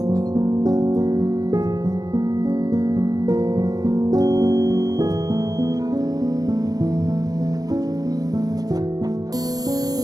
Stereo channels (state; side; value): late; left; 0.19 ms